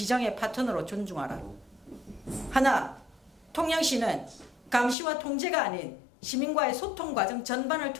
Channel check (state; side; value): drops out; right; at 5.0 s